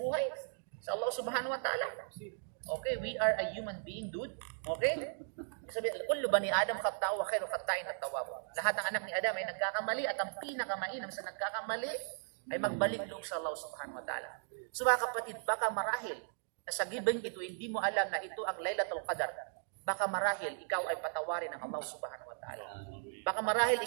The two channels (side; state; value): left; silent; digital silence